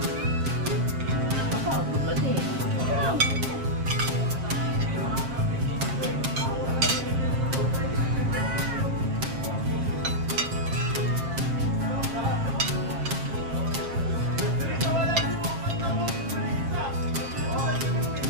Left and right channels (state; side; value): late; left; 7.6 ms